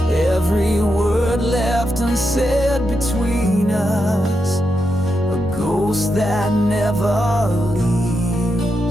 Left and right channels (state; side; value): normal; both; correlation 0.85